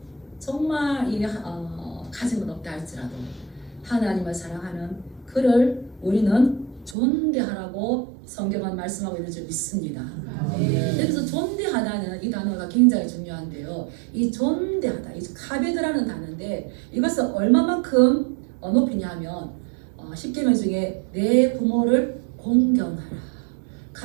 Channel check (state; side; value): drops out; left; at 7.0 s